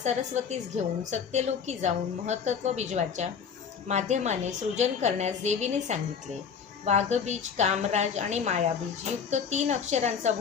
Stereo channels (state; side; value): quieter; right; 6.7 dB